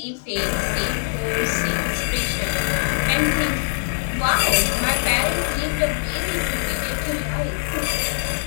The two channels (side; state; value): right; silent; digital silence